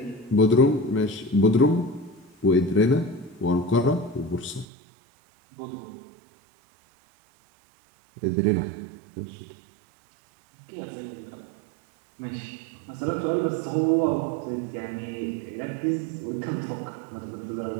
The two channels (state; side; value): drops out; left; at 4.7 s